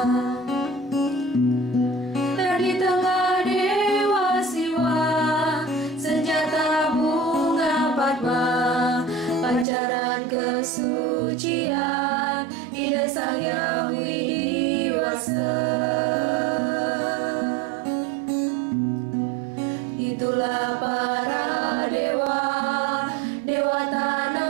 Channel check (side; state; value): left; drops out; at 9.7 s